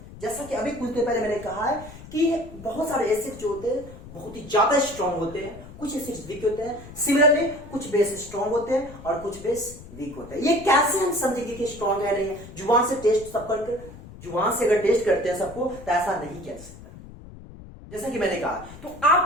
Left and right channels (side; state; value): left; noise; rumble, 16 dB below the sound